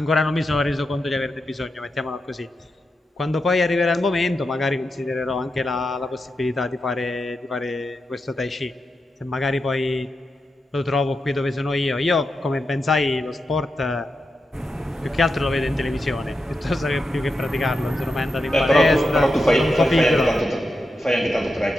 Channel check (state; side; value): normal; both; correlation 0.88